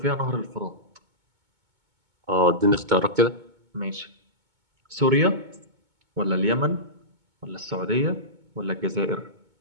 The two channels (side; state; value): left; late; 2.2 ms